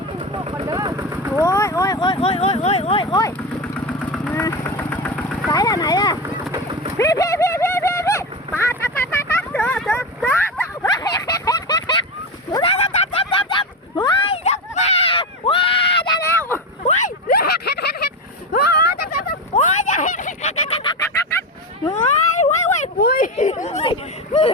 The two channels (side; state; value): both; normal; correlation 0.17